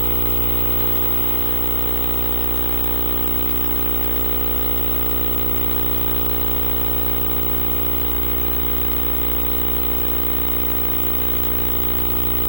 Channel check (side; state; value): right; late; 2.4 ms